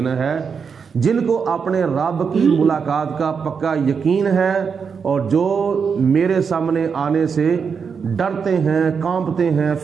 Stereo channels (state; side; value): quieter; left; 6.1 dB